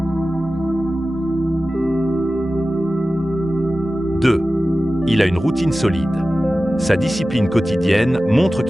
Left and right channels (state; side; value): normal; both; correlation 0.95